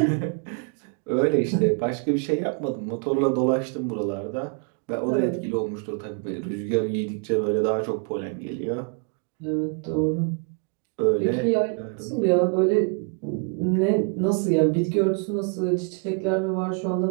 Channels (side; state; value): left; quieter; 37.6 dB